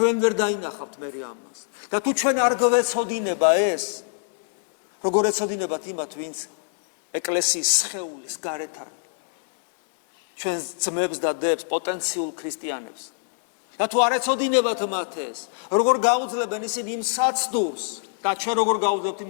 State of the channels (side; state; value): right; silent; digital silence